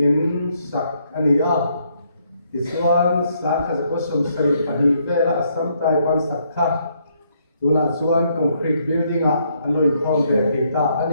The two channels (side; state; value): both; inverted; correlation -0.72